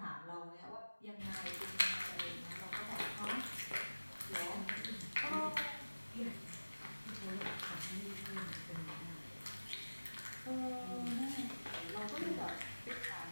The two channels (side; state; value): both; inverted; correlation -1.00